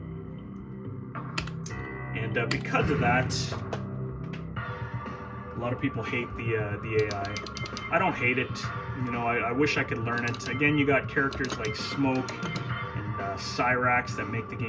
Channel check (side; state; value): both; identical; correlation 1.00